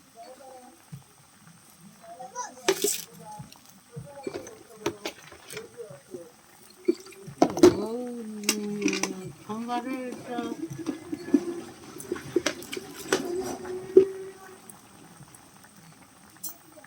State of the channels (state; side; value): identical; both; correlation 1.00